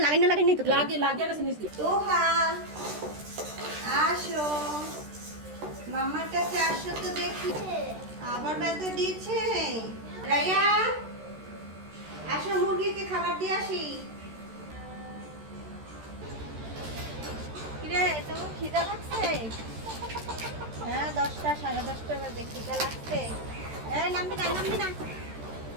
নাই তো। লাগিয়ে গেছে নিস দিয়ে তোহা আসো, মামার কাছে আসো তো দেখি। আবার ব্যথা দিচ্ছে। রাইয়া আসো, মুরগিকে খাবার দিয়ে আসি। কিরে তো খিদা লাগছে? হ্যাঁ 10টা 10:30 বাজে, খিদা লাগছে। এই নামবি না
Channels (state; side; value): late; left; 13 ms